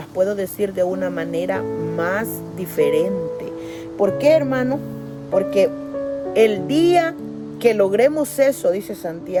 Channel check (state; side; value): identical; both; correlation 1.00